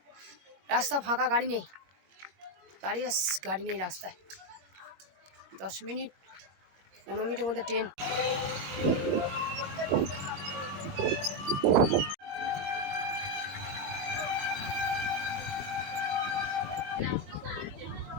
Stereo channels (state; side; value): late; left; 20 ms